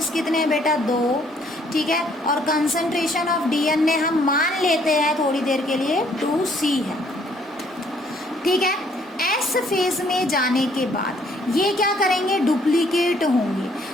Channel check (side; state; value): both; normal; correlation 0.64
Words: कितने हैं बेटा 2, ठीक है। और कंसंट्रेशन ऑफ डीएनए हम मान लेते हैं थोड़ी देर के लिए 2C है, ठीक है। एस फेज में जाने के बाद ये क्या करेंगे, डुप्लीकेट होंगे,